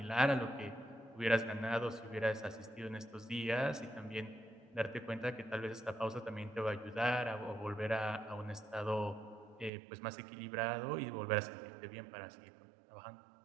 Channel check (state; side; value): drops out; left; at 9.7 s